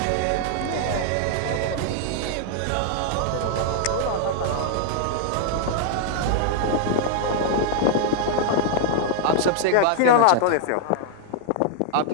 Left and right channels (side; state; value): both; different; correlation -0.01